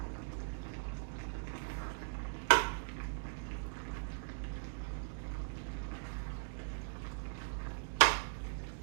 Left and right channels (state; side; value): silent; left; digital silence